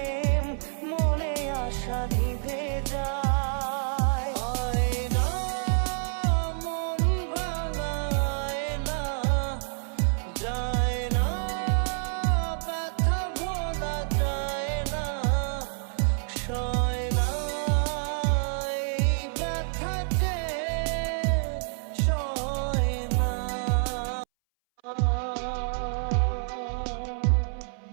মনে আশা নিভে যায়। আয়না মন ভাঙায় না, যায় না ব্যথা ভোলা যায় না, সয় না এই ব্যথা যে সয় না।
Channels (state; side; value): silent; left; 59 dB below the other